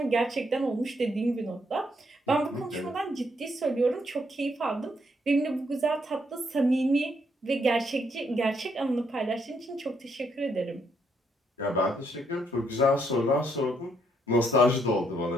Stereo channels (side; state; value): both; normal; correlation 0.74